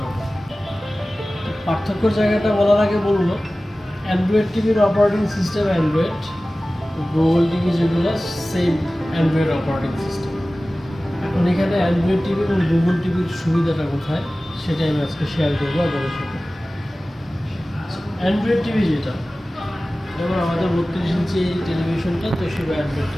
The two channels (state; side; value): normal; both; correlation 0.97